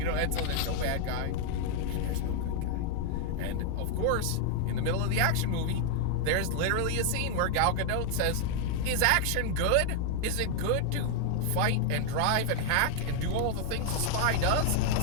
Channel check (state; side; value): different; both; correlation 0.00